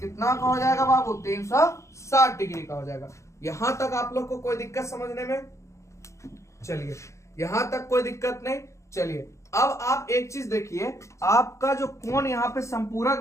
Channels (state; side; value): late; right; 0.14 ms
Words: का हो जाएगा बाबू 360 डिग्री का हो जाएगा। यहां तक आप लोग को कोई दिक्कत समझने में। चलिए यहां तक कोई दिक्कत नहीं। चलिए अब आप एक चीज देखिए, आपका जो कोण यहाँ पे संपूरक